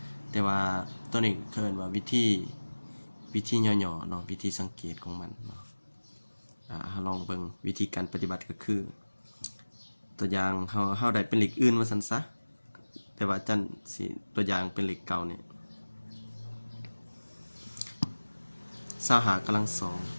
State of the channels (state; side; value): inverted; both; correlation -1.00